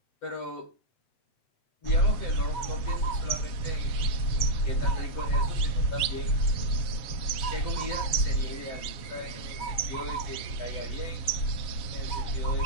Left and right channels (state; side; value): late; right; 7.4 ms